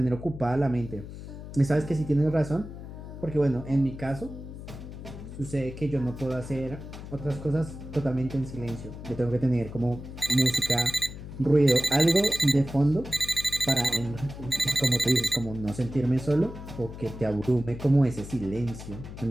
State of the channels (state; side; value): noise; left; hum, 12 dB below the sound